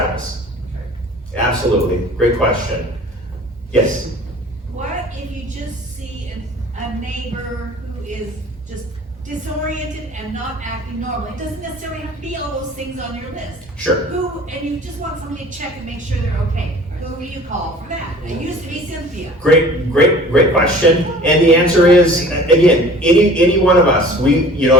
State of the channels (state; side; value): normal; both; correlation 0.46